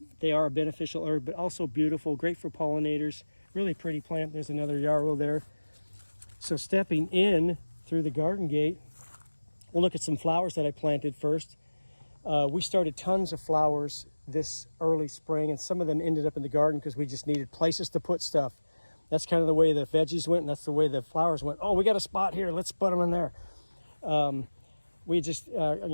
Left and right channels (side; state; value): both; inverted; correlation -1.00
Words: they are a beneficial herb, but also beautiful, great for pollinators. Really pretty plant. There's another yarrow there. So stepping in through the garden gate, we'll look at some flowers that I planted first. We started tons of flowers this early spring, and some of them ended up in the garden because we just needed places to put stuff. That's kind of the way the veggies went, and that's the way the flowers went. Oh, we got a spot here. Let's put them in there. We just,